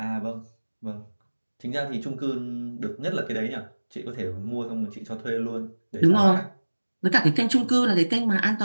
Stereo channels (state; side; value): inverted; both; correlation -1.00